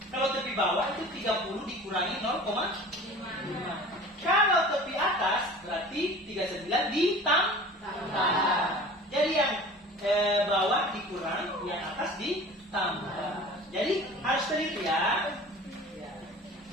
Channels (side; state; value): both; normal; correlation 0.41